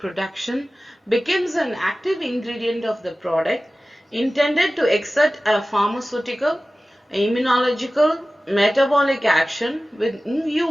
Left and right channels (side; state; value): both; normal; correlation 0.96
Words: becomes an active ingredient of the product, intended to exert a pharmaceutical, immunological, metabolic action with in